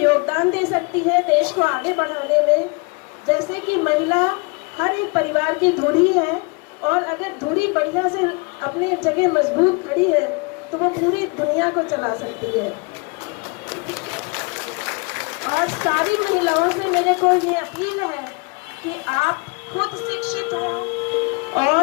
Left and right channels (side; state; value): right; quieter; 31.2 dB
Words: दे सकती है देश को आगे बढ़ाने में। जैसे कि महिला हर एक परिवार की धुरी है, और अगर धुरी बढ़िया से अपने जगह मजबूत खड़ी है तो वो पूरी दुनिया को चला सकती है। और सारी महिलाओं से मेरे को ये अपील है कि आप खुद शिक्षित हो